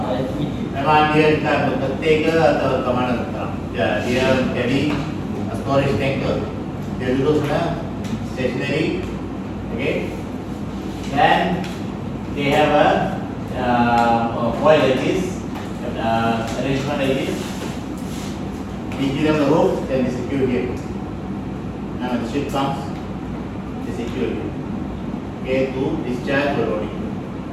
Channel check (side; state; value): both; identical; correlation 1.00